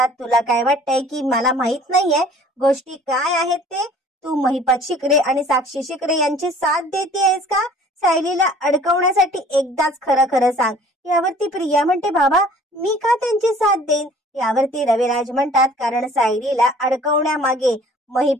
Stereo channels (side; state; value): both; normal; correlation 0.51